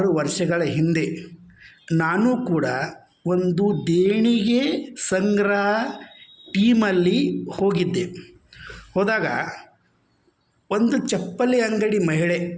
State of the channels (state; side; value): identical; both; correlation 1.00